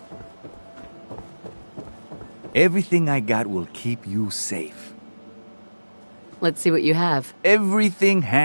Everything I got will keep you safe. Let's see what you have. Everything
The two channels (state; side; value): inverted; both; correlation -1.00